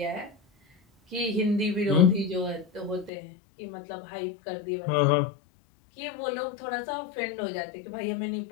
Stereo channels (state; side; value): drops out; right; at 3.1 s